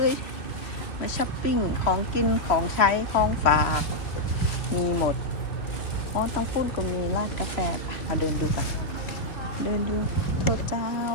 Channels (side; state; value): right; late; 3.1 ms